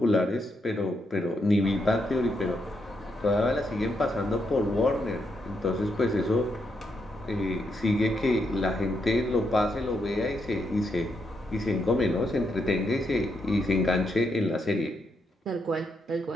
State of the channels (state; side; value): normal; both; correlation 0.80